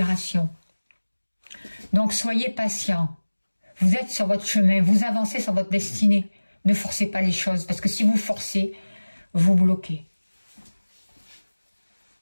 Donc, soyez patient. Vous êtes sur votre chemin, vous avancez sur votre destinée. Ne forcez pas les choses, parce que si vous forcez, vous bloquez.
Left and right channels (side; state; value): both; inverted; correlation -1.00